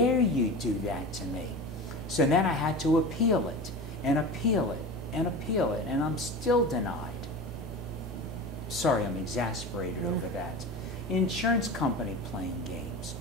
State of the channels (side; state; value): both; normal; correlation 0.30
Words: you do that to me? So then I had to appeal it and appeal it and appeal it, and I'm still denied. Sorry, I'm exasperated over that. Insurance company playing games.